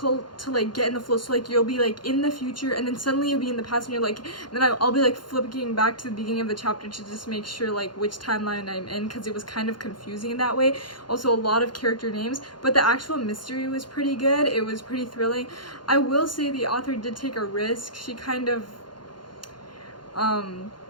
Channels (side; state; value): right; late; 0.71 ms